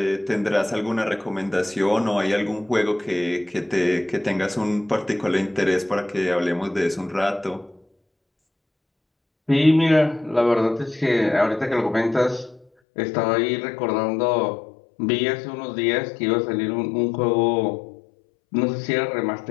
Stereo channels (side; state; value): right; drops out; at 12.7 s